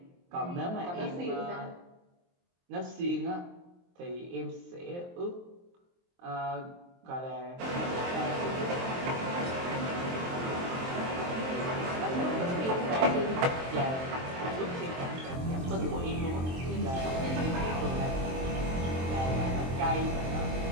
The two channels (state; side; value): late; left; 23 ms